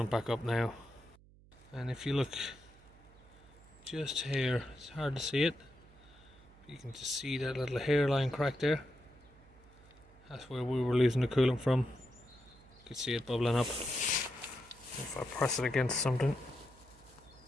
back up now. And if you look just here, it's hard to see it, but you can just see that little hairline crack there. That's where we were losing the coolant from. You can see it bubbling up. If I press it against something,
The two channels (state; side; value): noise; right; hum, 25 dB below the sound